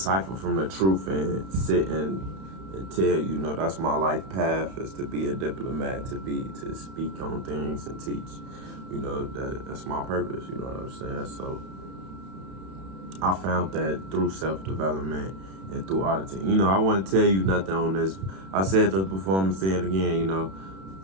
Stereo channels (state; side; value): late; left; 31 ms